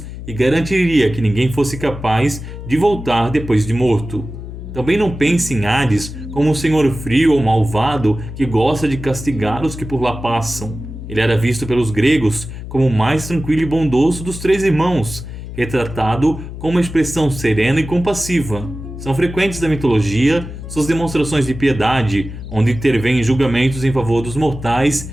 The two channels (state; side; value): noise; left; hum, 10 dB below the sound